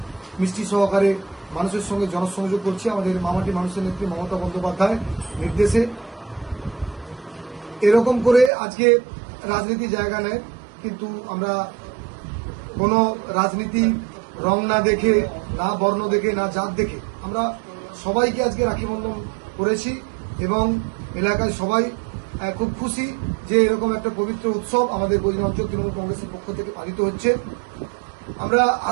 মিষ্টি সহকারে মানুষের সঙ্গে জনসংযোগ করছি। আমাদের মামাটি মানুষের নেত্রী মমতা বন্দ্যোপাধ্যায় নির্দেশে এরকম করে আজকে রাজনীতি জায়গা নেয়, কিন্তু আমরা কোনো রাজনীতি রং না দেখে, না বর্ণ দেখে, না জাত দেখে আমরা সবাইকে আজকে রাখি বন্ধন করেছি এবং এলাকায় সবাই খুব খুশি যে এরকম একটা পবিত্র উৎসব আমাদের গজনি অঞ্চল তৃণমূল কংগ্রেসের পক্ষ থেকে পালিত হচ্ছে। আমরা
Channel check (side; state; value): left; drops out; at 8.5 s